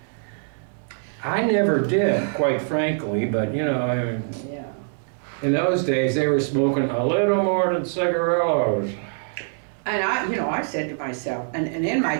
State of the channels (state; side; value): silent; left; 59 dB below the other